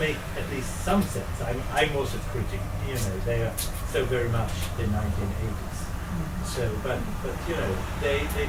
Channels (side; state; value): both; identical; correlation 1.00